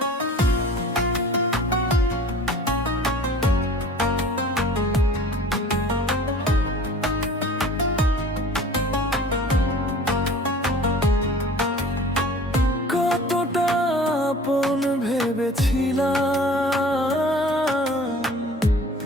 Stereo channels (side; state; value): both; normal; correlation 0.45